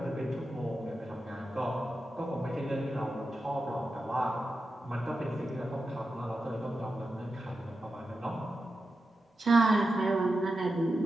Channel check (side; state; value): both; normal; correlation 0.90